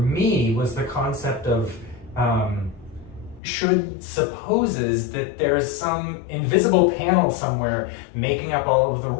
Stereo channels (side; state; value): right; drops out; at 3.4 s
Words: was the concept of should supposes that there's some invisible panel somewhere making up all of the